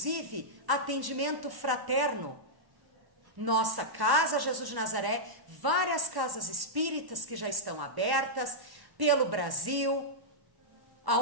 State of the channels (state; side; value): late; left; 1.1 ms